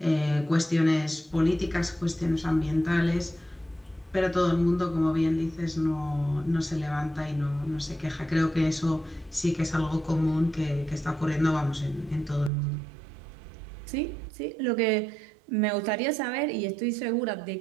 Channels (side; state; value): left; drops out; at 12.5 s